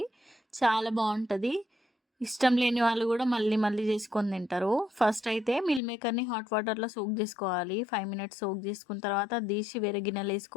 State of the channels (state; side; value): drops out; right; at 5.8 s